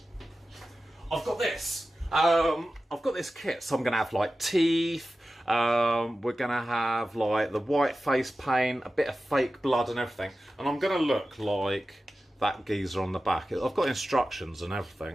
this. I've got this kit, so I'm going to have, like, teeth. We're going to have like the white face paint, a bit of fake blood and everything, and I'm going to look like that geezer on the back. I've got instructions and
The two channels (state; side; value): normal; both; correlation 0.94